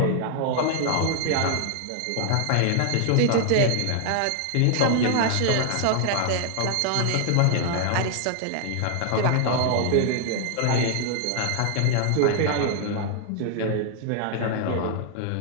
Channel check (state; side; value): different; both; correlation 0.00